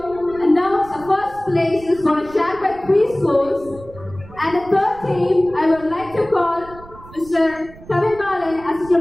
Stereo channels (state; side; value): noise; right; rumble, 19 dB below the sound